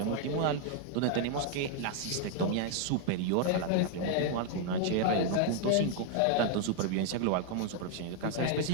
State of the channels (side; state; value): both; different; correlation 0.00